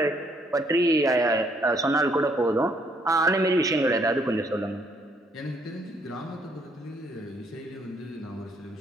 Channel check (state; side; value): normal; both; correlation 0.68